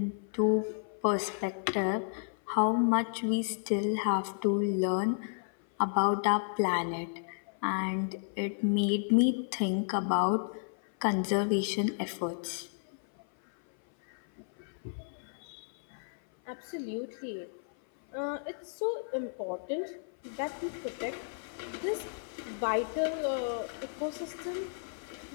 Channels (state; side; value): silent; right; 56 dB below the other